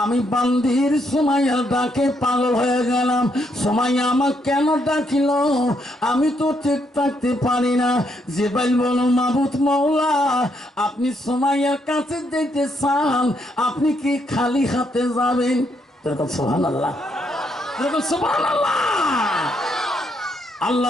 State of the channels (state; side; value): normal; both; correlation 0.75